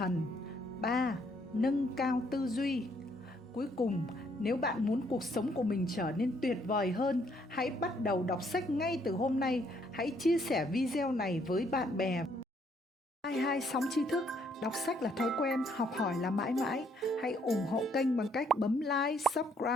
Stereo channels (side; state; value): both; normal; correlation 0.69